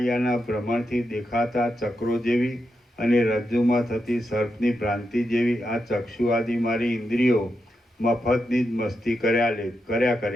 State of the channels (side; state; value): both; normal; correlation 0.86